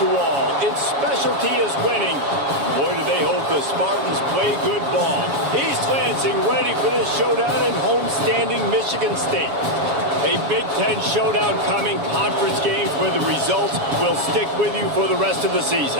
all. Its specialty is winning. Boy, do they hope the Spartans play good ball. East Lansing ready for this showdown in homestanding Michigan State. A Big Ten showdown coming, conference games where the results will stick with you for the rest of the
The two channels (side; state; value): left; late; 7.2 ms